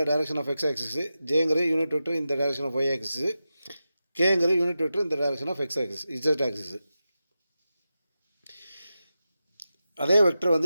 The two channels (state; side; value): inverted; both; correlation -0.92